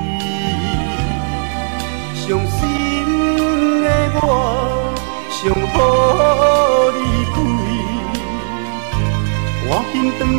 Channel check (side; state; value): left; silent; digital silence